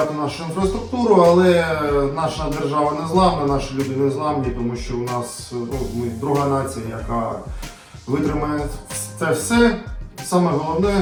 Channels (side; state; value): both; identical; correlation 1.00